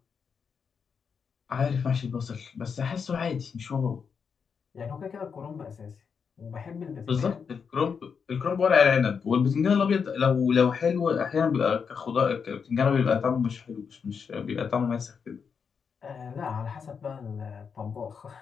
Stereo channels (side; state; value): right; quieter; 6.2 dB